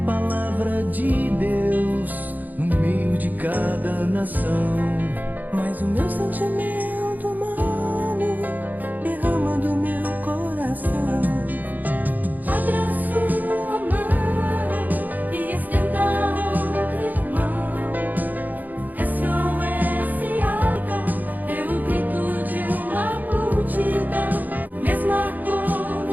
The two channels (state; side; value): late; left; 0.083 ms